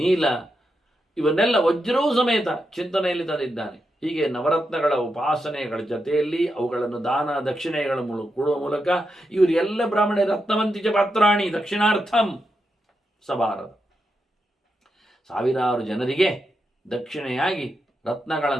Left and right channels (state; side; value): normal; both; correlation 0.86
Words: ಇವನ್ನೆಲ್ಲ ವಜ್ರವೂ ಸಮೇತ ಚಿಂತನೆಯಲ್ಲಿ ತಂದಿದ್ದಾನೆ. ಹೀಗೆ ನವರತ್ನಗಳ ಉಪಾಸನೆಗಳ ಜೊತೆಯಲ್ಲಿ ಅವುಗಳನ್ನು ದಾನ ದಕ್ಷಿಣೆಗಳ ಕೊಡುವ ಮೂಲಕ ಇವರೆಲ್ಲ ಬ್ರಾಹ್ಮಣ ರತ್ನವಂತಿಚ ಪಾತ್ರಾಣಿ ದಕ್ಷಿಣಾರ್ಥಂ ಸಬಾರದ. ಸಾವಿರಾರು ಜನರಿಗೆ ದಕ್ಷಿಣೆಯಾಗಿ